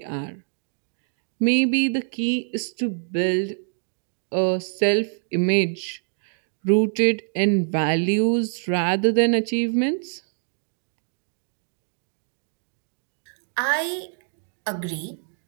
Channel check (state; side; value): silent; left; 60 dB below the other